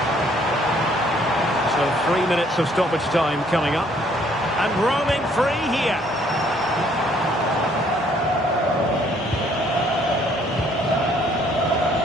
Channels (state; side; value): normal; both; correlation 0.63